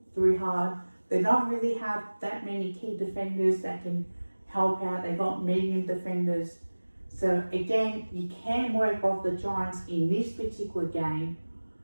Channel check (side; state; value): both; inverted; correlation -1.00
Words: through hard. They don't really have that many key defenders that can help out. They've got medium defenders. So again, you can work off the Giants in this particular game,